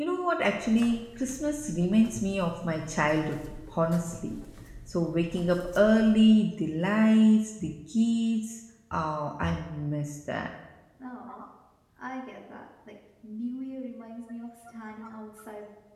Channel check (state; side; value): identical; both; correlation 1.00